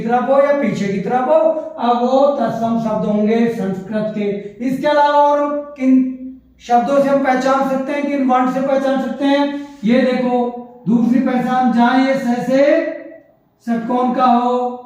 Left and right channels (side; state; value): both; identical; correlation 1.00